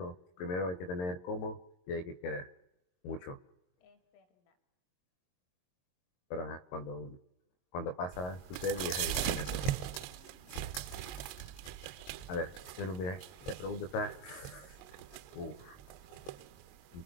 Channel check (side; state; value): right; late; 22 ms